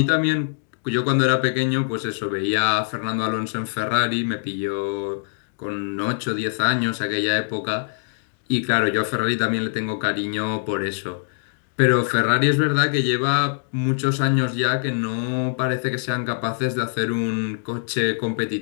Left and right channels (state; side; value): silent; right; digital silence